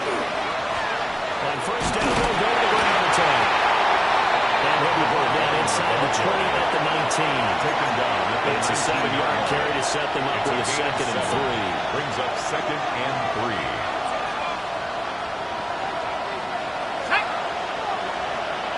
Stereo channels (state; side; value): identical; both; correlation 1.00